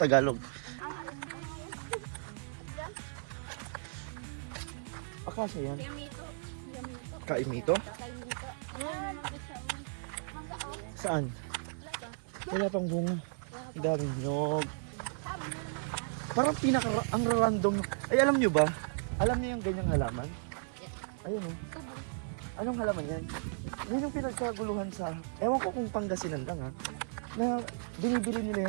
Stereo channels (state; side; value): silent; left; 55 dB below the other